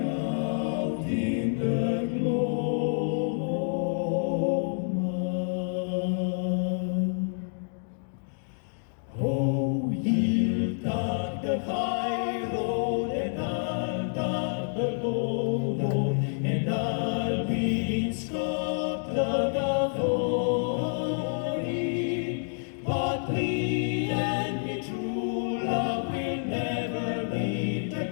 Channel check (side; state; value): right; silent; digital silence